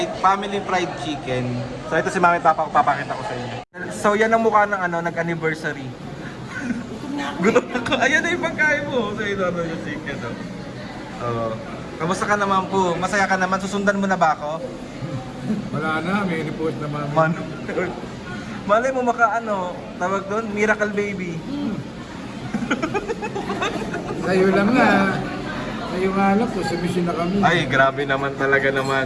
fried chicken. So ito si Mami Papa, papakita ko sa inyo. So yan ang mukha ng nag-anniversary. Gutom na ko. Ayan na yung pagkain mo. So ito yung chicken. Kamusta ka naman po? Masaya ka naman? Susundan mo na ba ako? Wala na, may report naman. Malay mo tawag doon, miracle baby. Sa'yo lang nga. Sa'yo nga lang po, submission na kami. Ay, grabe naman talaga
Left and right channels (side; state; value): both; identical; correlation 1.00